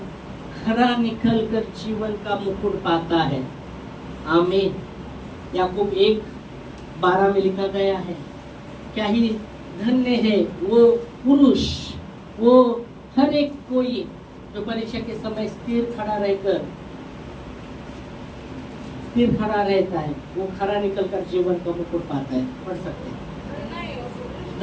खरा निकल कर जीवन का मुकुट पाता है। आमीन। याकूब 1:12 में लिखा गया है क्या ही धन्य है वो पुरुष, वो हर एक कोई जो परीक्षा के समय स्थिर खड़ा रहता है, वो खरा निकल कर जीवन का मुकुट पाता है। पढ़ सकते हैं।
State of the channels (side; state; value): both; identical; correlation 1.00